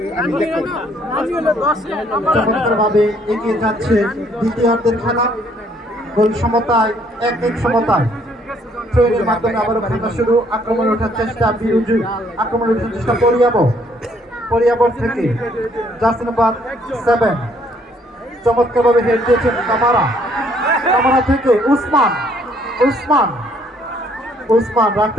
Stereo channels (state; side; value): normal; both; correlation 0.65